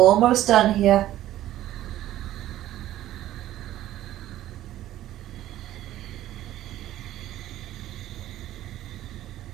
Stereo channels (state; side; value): quieter; left; 13.7 dB